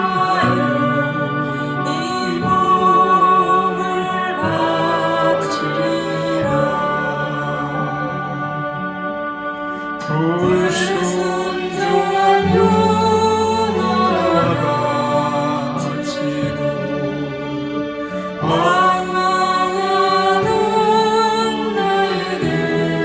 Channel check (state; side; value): identical; both; correlation 1.00